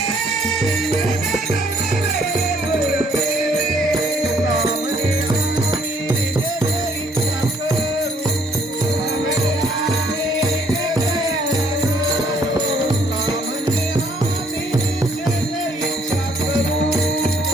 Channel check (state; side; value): normal; both; correlation 0.64